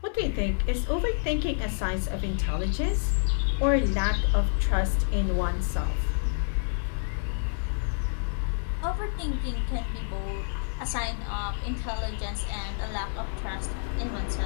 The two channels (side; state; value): right; silent; digital silence